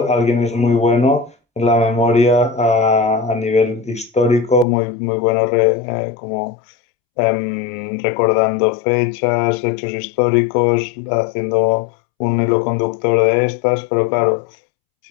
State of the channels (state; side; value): drops out; right; at 4.7 s